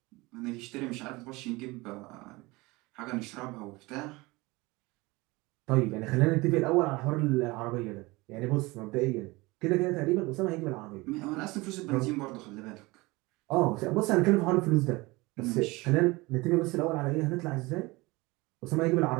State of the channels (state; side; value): quieter; left; 22.7 dB